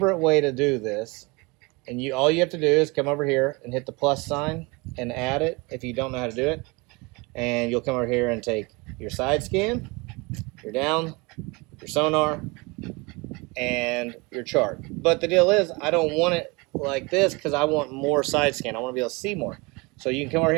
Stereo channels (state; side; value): quieter; left; 26.6 dB